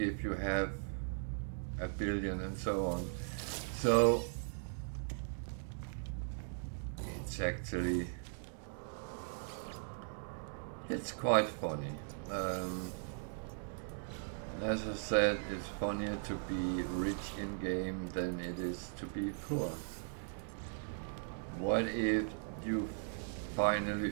you have 1 billion and so on. So it's quite funny. As I said, it's funnier to be rich in game than it is to be poor. What if you finally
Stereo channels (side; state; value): left; silent; digital silence